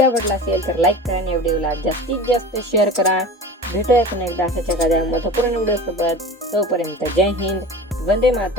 आवडला असेल तर लाईक करा आणि व्हिडिओला जास्तीत जास्त शेअर करा. भेटूया पुन्हा एकदा अशाच एखाद्या महत्त्वपूर्ण व्हिडिओ सोबत. तोपर्यंत जय हिंद, वंदे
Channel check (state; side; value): normal; both; correlation 0.35